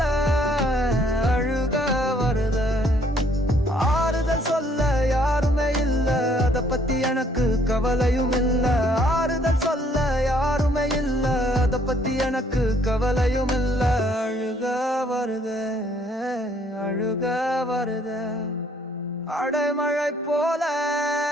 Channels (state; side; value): normal; both; correlation 0.64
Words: அழுக வருதே ஆறுதல் சொல்ல யாருமே இல்ல அத பத்தி எனக்கு கவலையும் இல்ல ஆறுதல் சொல்ல யாருமே இல்ல அத பத்தி எனக்கு கவலையும் இல்ல அழுக வருதே அழுக வருதே அடைமழை போல